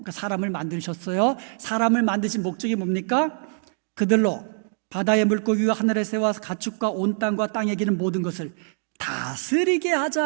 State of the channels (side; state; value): left; silent; digital silence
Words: 사람을 만드셨어요. 사람을 만드신 목적이 뭡니까? 그들로 바다의 물고기와 하늘의 새와 가축과 온 땅과 땅에 기는 모든 것을 다스리게